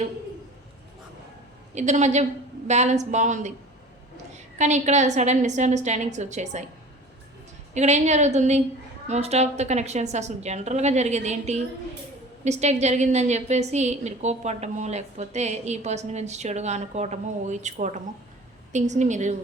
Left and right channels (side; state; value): both; normal; correlation 0.41